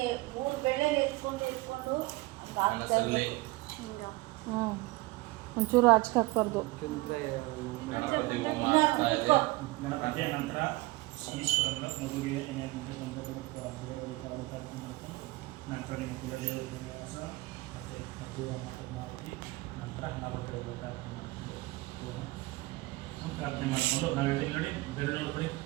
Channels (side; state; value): left; quieter; 21.4 dB